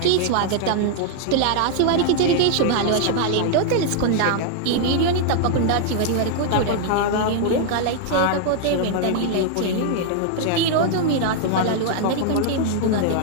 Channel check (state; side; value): different; both; correlation 0.00